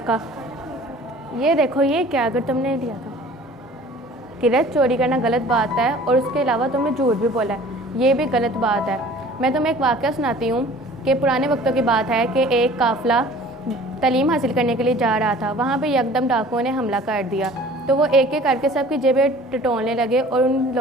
ये देखो, ये क्या, अगर तुमने लिया था। किरत, चोरी करना गलत बात है और उसके अलावा तुमने झूठ भी बोला है, ये भी गलत बात है। मैं तुम्हें एक वाक़या सुनाती हूँ कि पुराने वक्तों की बात है कि एक काफ़िला तालीम हासिल करने के लिए जा रहा था। वहाँ पे यकदम डाकुओं ने हमला कर दिया, तो वो एक एक करके सबकी जेबें टटोलने लगे और उन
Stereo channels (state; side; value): normal; both; correlation 0.48